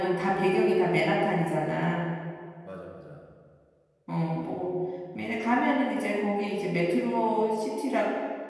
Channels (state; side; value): identical; both; correlation 1.00